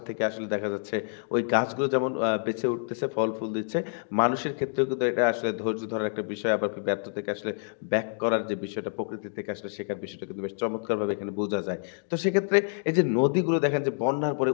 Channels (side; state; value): right; silent; digital silence